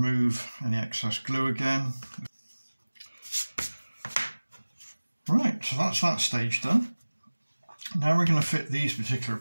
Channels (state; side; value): inverted; both; correlation -1.00